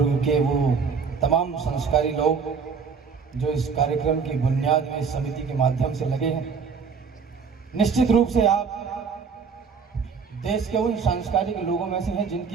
के वो तमाम संस्कारी लोग जो इस कार्यक्रम की बुनियाद में इस समिति के माध्यम से लगे हैं। निश्चित रूप से आप देश के उन सांस्कृतिक लोगों में से हैं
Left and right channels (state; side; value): quieter; left; 5.7 dB